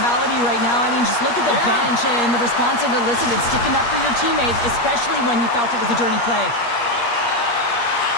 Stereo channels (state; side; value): late; right; 8.5 ms